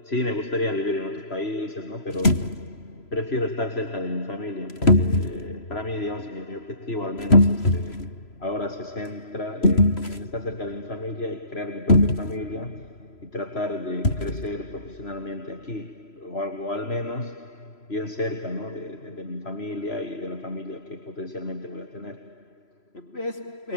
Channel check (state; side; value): late; right; 3.0 ms